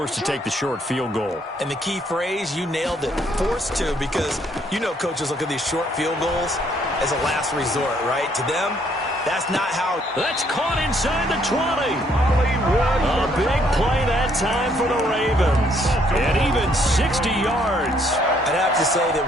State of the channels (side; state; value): both; normal; correlation 0.68